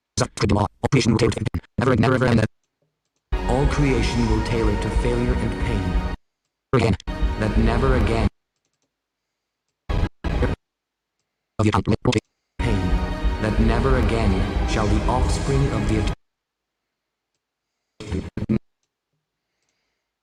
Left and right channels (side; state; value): both; identical; correlation 1.00